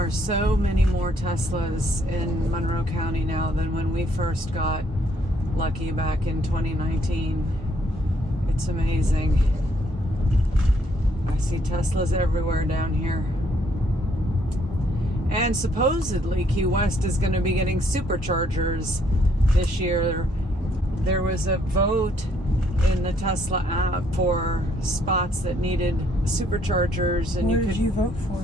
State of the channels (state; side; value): normal; both; correlation 0.68